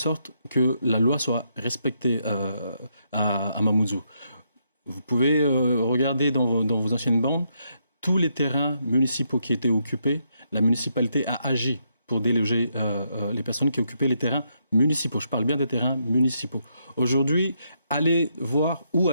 que la loi soit respectée à Mamoudzou. Vous pouvez regarder dans vos anciennes bandes, tous les terrains municipaux qui étaient occupés, la municipalité a agi pour déloger les personnes qui occupaient les terrains municipaux. Je parle bien des terrains municipaux. Aujourd'hui, allez voir où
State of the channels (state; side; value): inverted; both; correlation -0.77